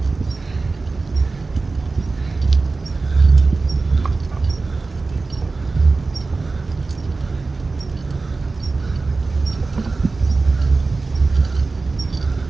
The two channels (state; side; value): quieter; left; 3.8 dB